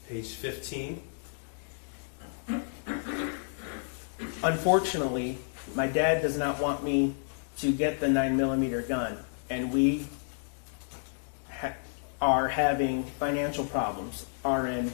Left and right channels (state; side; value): silent; right; digital silence